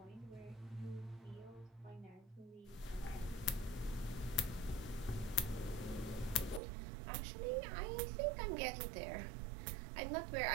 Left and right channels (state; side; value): drops out; left; at 6.6 s